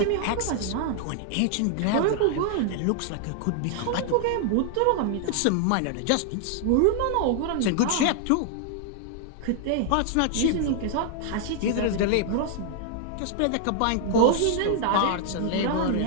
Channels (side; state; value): both; different; correlation 0.00